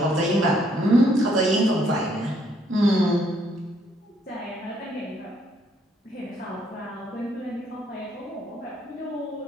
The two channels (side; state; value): both; normal; correlation 0.68